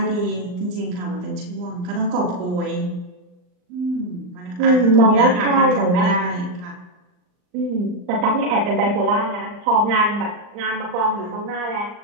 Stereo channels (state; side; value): late; left; 39 ms